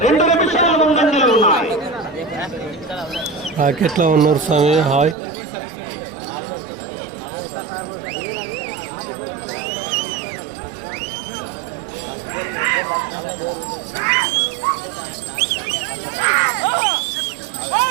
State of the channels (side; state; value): left; drops out; at 5.2 s